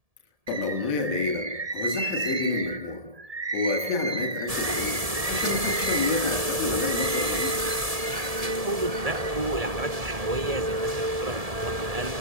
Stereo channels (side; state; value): left; late; 1.7 ms